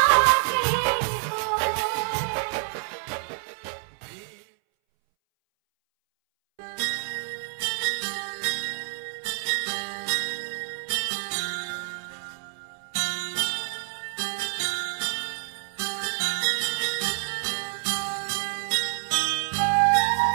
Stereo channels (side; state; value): left; silent; 60 dB below the other